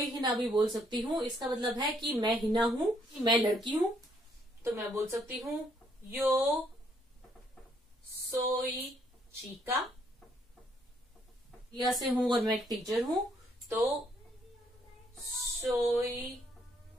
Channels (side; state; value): both; normal; correlation 0.70